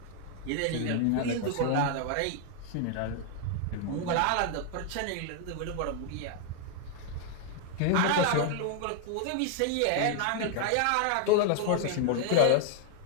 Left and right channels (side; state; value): both; different; correlation 0.00